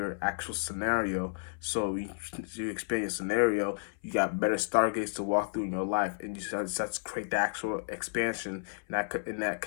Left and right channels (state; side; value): silent; right; 56 dB below the other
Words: actual scenario. So you expand your scenario. You got better stargates to walk through in your life, and you start to create the actual expansion in that